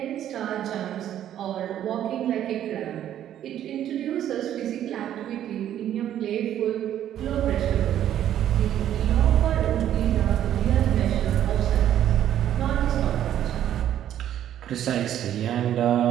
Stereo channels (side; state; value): left; quieter; 11.1 dB